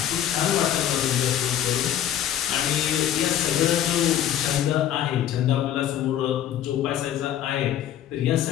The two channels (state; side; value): quieter; right; 10.8 dB